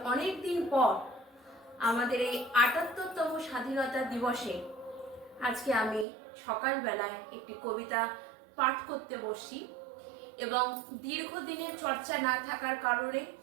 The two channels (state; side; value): drops out; left; at 6.1 s